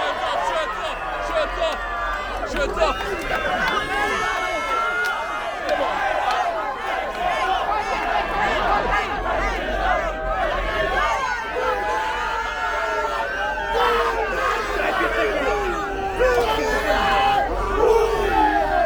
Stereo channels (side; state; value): both; identical; correlation 1.00